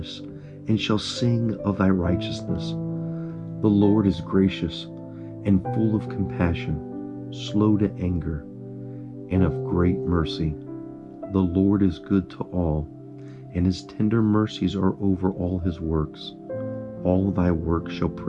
and shall sing of thy righteousness. The Lord is gracious and full of compassion, slow to anger, and of great mercy. The Lord is good to all, and his tender mercies are over all his works. All thy works shall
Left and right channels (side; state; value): both; identical; correlation 1.00